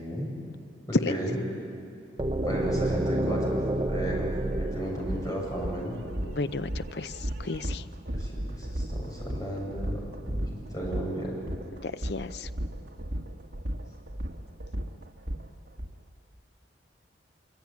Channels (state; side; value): normal; both; correlation 0.72